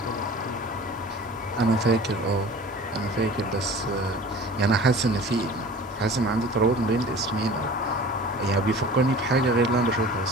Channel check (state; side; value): normal; both; correlation 0.42